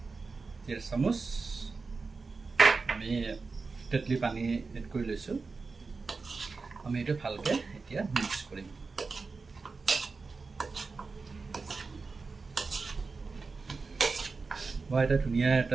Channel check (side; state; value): left; quieter; 4.3 dB